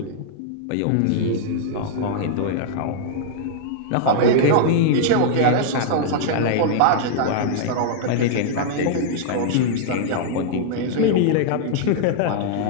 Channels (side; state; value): both; different; correlation -0.01